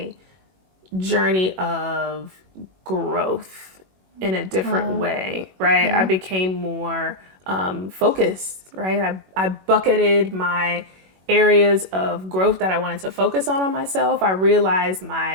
journey of growth in a different way, right? Yeah. I became more focused, right? I bucketed my areas of growth that I wanted to focus on myself. I realized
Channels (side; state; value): left; late; 21 ms